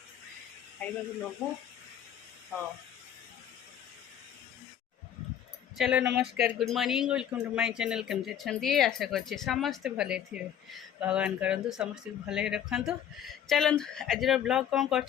खाइबा को लोभ हाँ चलो नमस्कार good morning welcome to my channel केमती अच्छे आशा करछे समस्ते भले थे भगवान करंतु समस्त भले रखंतु चलंतु आज ब्लॉग कौन कर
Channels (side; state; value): right; quieter; 9.7 dB